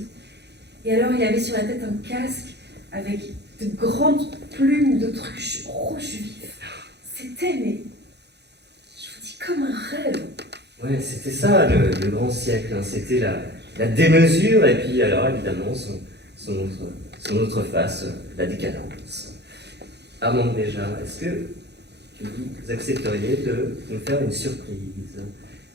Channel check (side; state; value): left; late; 0.49 ms